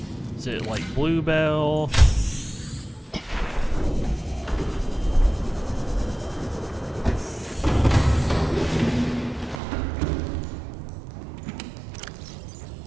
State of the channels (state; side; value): drops out; left; at 9.6 s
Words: Is it like Bluebell?